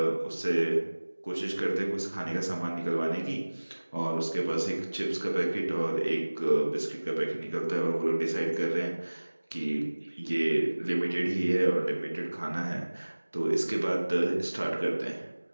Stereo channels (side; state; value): both; inverted; correlation -1.00